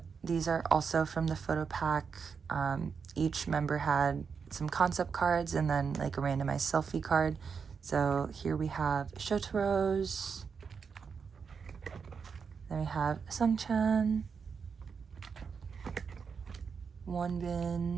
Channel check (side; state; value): left; quieter; 6.0 dB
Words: these are also from the photo pack. Each member had some concept cards and then like a randomized selfie card. So here we have Shotaro's. Then we have Sungchan,